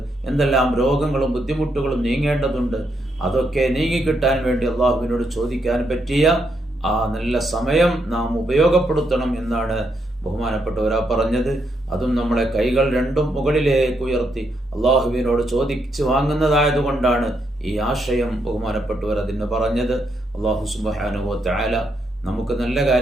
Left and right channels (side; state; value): both; normal; correlation 0.78